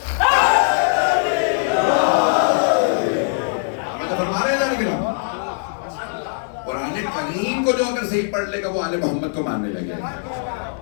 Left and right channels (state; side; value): silent; right; digital silence